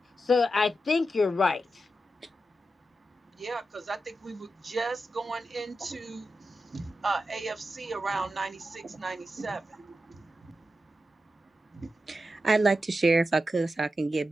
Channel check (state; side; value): normal; both; correlation 0.89